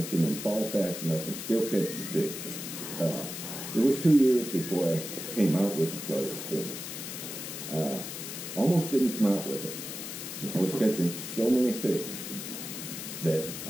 and fall fast enough and still catch the fish. It was 2 years before I came out with the flutter spoon. Almost didn't come out with it. I was catching so many fish that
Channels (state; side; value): noise; left; hiss, 7 dB below the sound